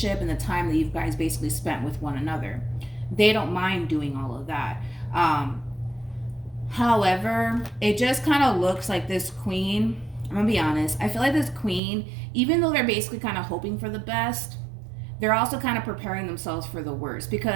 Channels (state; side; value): drops out; left; at 11.8 s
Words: and the time that you guys basically spent with one another. They don't mind doing all of that. However, it just kind of looks like this queen, I'm going to be honest, I feel like this queen, even though they're basically kind of hoping for the best, they're also kind of preparing themselves for the worst